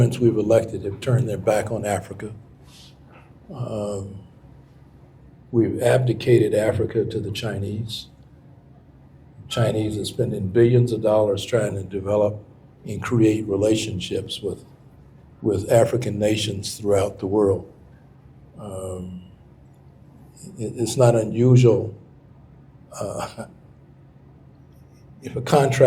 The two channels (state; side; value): identical; both; correlation 1.00